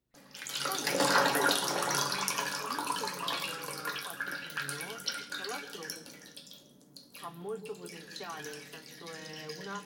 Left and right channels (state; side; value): identical; both; correlation 1.00